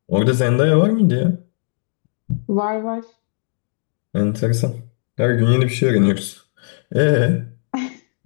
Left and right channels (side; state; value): right; silent; digital silence